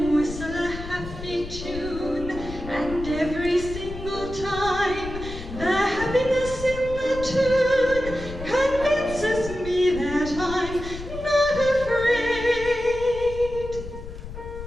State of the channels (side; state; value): left; noise; rumble, 11 dB below the sound